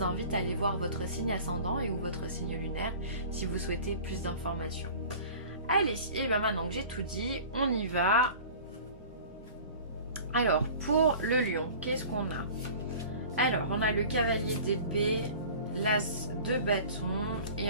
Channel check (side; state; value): both; inverted; correlation -0.42